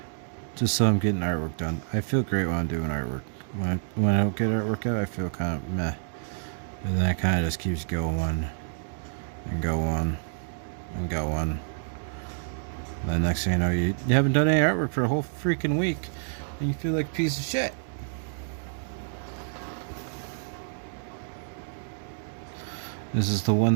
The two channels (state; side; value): silent; left; digital silence